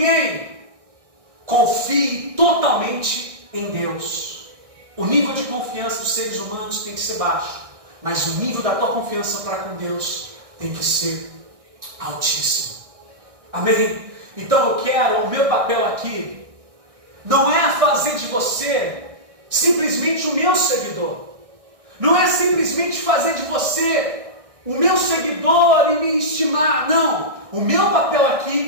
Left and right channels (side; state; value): left; late; 1.6 ms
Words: Confie totalmente em Deus. O nível de confiança dos seres humanos tem que ser baixo, mas o nível da tua confiança para com Deus tem que ser altíssimo. Amém? Então eu quero, o meu papel aqui não é fazer de você simplesmente o meu seguidor. Não é simplesmente fazer de você o meu seguidor e me estimar. Não. O meu papel